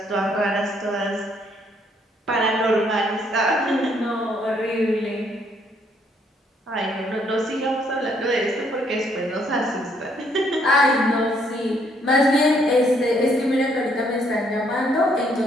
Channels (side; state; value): both; normal; correlation 0.69